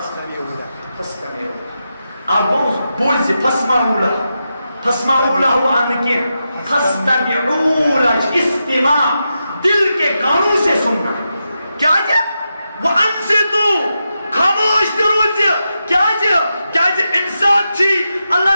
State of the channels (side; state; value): both; inverted; correlation -0.88